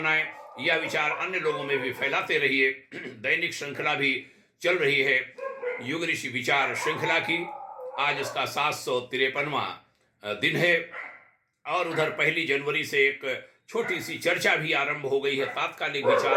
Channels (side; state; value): both; identical; correlation 1.00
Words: यह विचार अन्य लोगों में भी फैलाते रहिए। दैनिक श्रृंखला भी चल रही है, युग ऋषि विचार श्रृंखला की। आज इसका 753वां दिन है और उधर 1 जनवरी से एक छोटी सी चर्चा भी आरंभ हो गई है। तात्कालिक